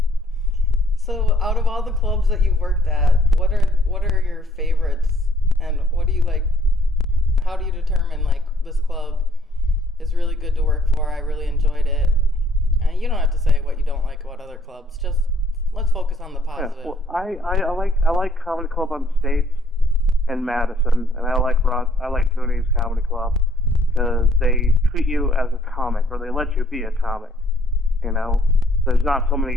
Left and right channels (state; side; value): normal; both; correlation 0.65